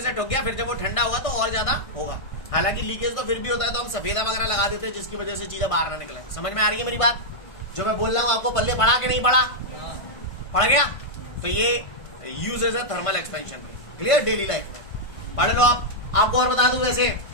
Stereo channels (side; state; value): right; late; 1.6 ms